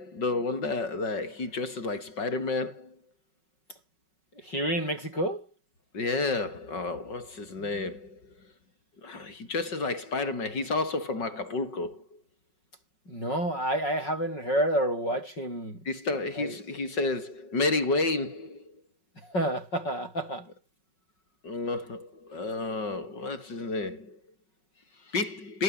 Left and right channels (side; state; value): right; late; 5.4 ms